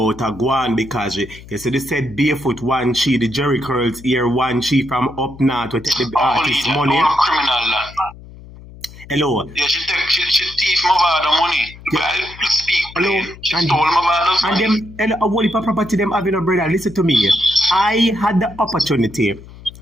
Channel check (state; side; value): noise; left; hum, 18 dB below the sound